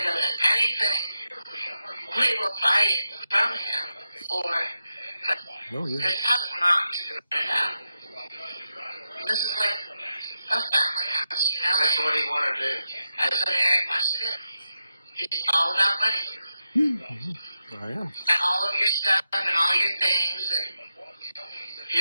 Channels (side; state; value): both; inverted; correlation -0.86